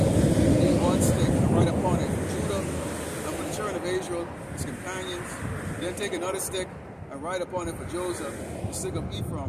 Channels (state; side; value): identical; both; correlation 1.00